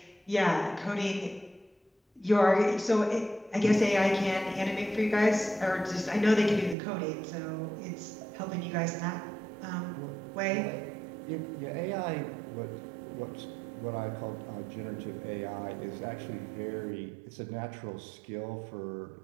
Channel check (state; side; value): drops out; left; at 6.8 s